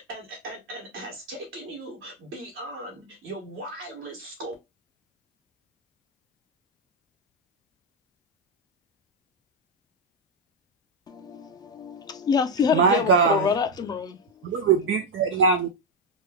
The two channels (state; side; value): normal; both; correlation 0.04